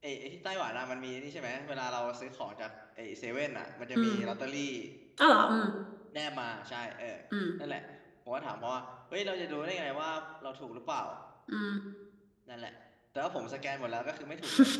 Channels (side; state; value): both; identical; correlation 1.00